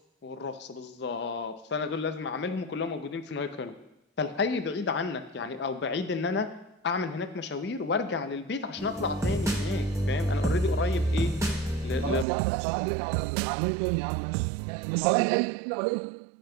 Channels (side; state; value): left; drops out; at 12.2 s